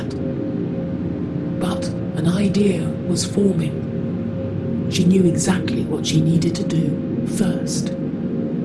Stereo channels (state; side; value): identical; both; correlation 1.00